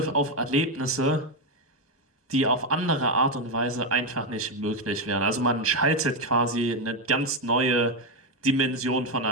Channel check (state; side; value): normal; both; correlation 0.06